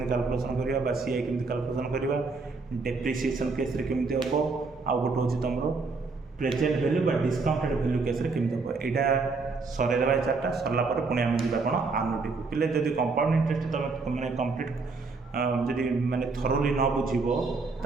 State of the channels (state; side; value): quieter; left; 4.1 dB